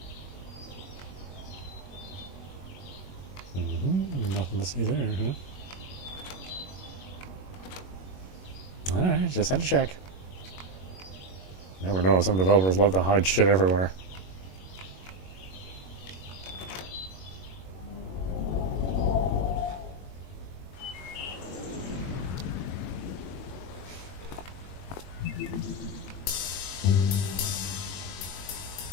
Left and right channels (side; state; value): right; late; 21 ms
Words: Nothing to see there, huh? Alright, just had to check. Never know, some developers love to hide shit everywhere.